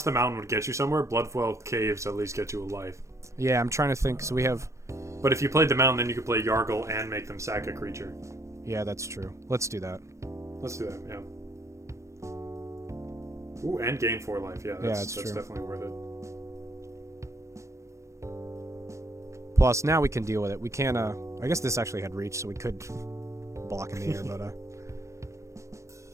the mountain would get you somewhere, Bloodfell Caves at least get you a life. Yeah, I'm trying to think. So we have. But if you played the mountain, then you could play Yargle and make them sack a creature. Yeah, that's true. Let's do that. Let's do that. Yeah. Ooh, and gain 4 life. Yeah, that's true. definitely worth it. Plus, now we can deal with it. We can. I guess this actually had reach, so we could block in the air, but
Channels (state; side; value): late; left; 0.14 ms